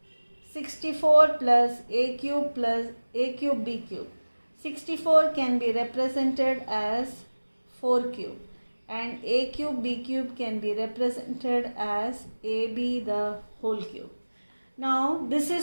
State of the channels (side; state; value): both; inverted; correlation -1.00